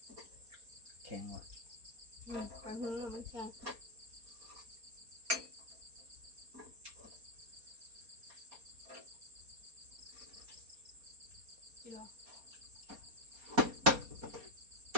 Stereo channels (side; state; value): left; late; 4.3 ms